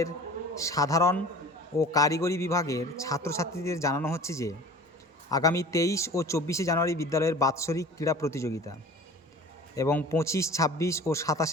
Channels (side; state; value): both; normal; correlation 0.42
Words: সাধারণ ও কারিগরি বিভাগের ছাত্রছাত্রীদের জানানো হচ্ছে যে আগামী 23 ও 24শে জানুয়ারি বিদ্যালয়ের বাৎসরিক ক্রীড়া প্রতিযোগিতা এবং 25, 26 ও